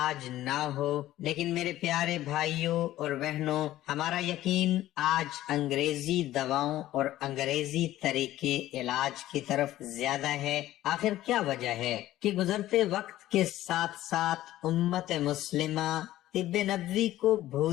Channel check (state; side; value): quieter; right; 14.5 dB